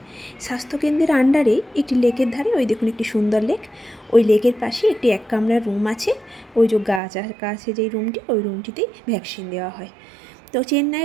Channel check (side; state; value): left; drops out; at 7.0 s